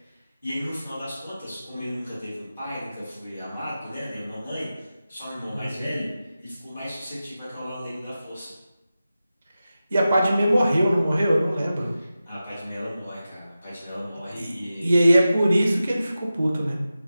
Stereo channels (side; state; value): both; inverted; correlation -0.93